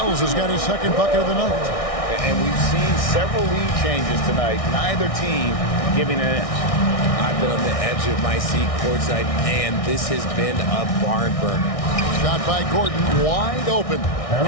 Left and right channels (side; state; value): right; late; 1.6 ms